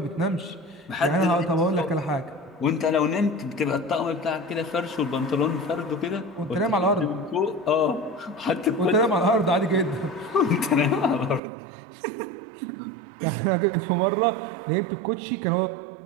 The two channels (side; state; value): left; drops out; at 11.4 s